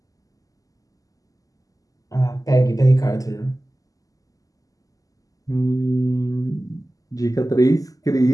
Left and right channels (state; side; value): late; right; 0.17 ms